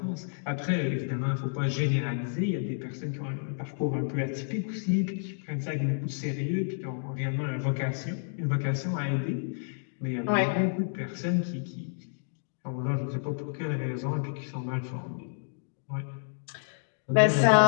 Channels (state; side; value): silent; right; digital silence